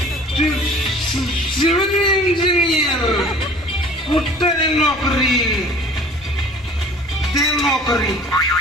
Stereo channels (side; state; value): both; normal; correlation 0.48